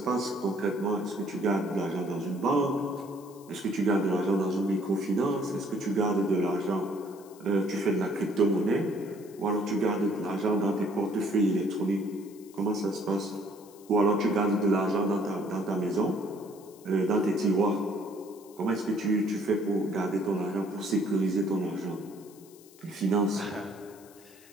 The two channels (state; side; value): noise; left; hiss, 24 dB below the sound